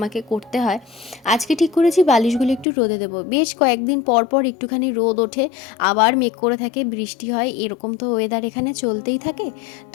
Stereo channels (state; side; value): drops out; right; at 2.7 s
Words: করতে হয়। আজকে ঠিক করেছি বালিশগুলো একটু রোদে দেবো, বেশ কয়েকদিন পর পর একটুখানি রোদ ওঠে, আবার মেঘ করে থাকে, বৃষ্টি হয়, এরকম তো ওয়েদার এখানে চলতেই থাকে।